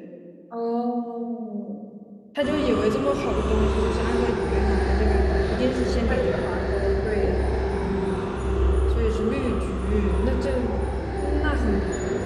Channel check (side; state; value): both; identical; correlation 1.00